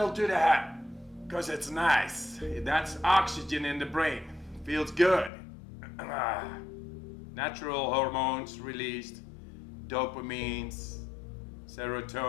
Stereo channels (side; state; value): right; drops out; at 5.3 s